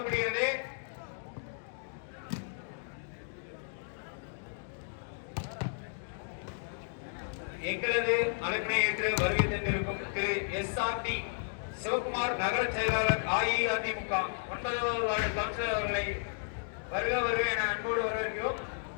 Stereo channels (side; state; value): right; silent; digital silence